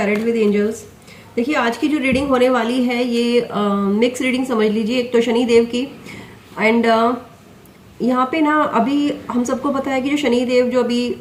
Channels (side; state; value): both; identical; correlation 1.00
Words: with angels. देखिए, आज की जो रीडिंग होने वाली है ये मिक्स रीडिंग समझ लीजिए। एक तो शनि देव की एंड यहाँ पे ना अभी हम सबको पता है कि जो शनि देव जो अभी